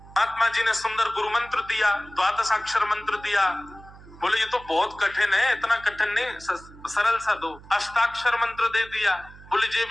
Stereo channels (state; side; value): noise; right; hum, 20 dB below the sound